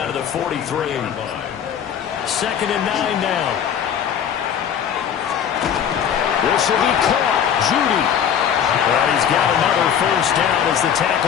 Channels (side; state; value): right; quieter; 8.6 dB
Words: to the 43. 2nd and 9 now. This will be caught. Judy. And he's got another first down as the